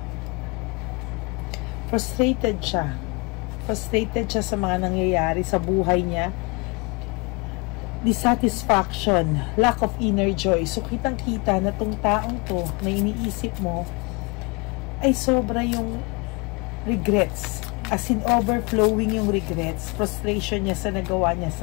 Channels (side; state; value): right; quieter; 28.6 dB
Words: Frustrated siya. Frustrated siya sa mga nangyayari sa buhay niya. dissatisfaction, lack of inner joy. So kitang-kita na tong taong to na iniisip mo ay sobra yung regrets, as in overflowing yung regrets, frustration niya sa nagawa niya